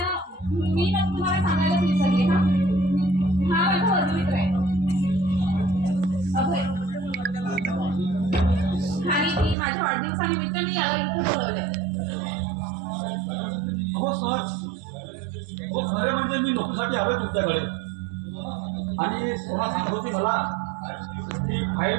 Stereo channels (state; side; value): drops out; left; at 9.6 s